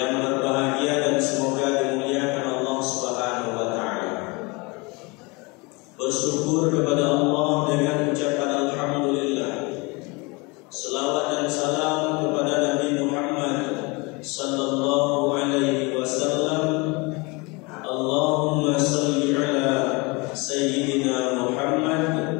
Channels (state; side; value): quieter; right; 27.4 dB